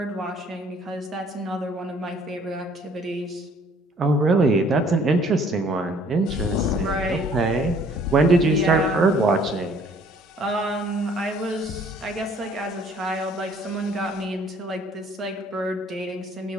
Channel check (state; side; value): normal; both; correlation 0.58